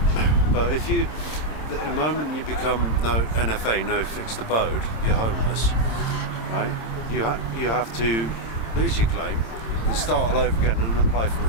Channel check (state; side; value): late; right; 26 ms